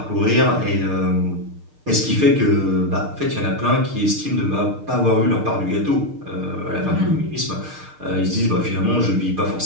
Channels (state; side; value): late; left; 6.6 ms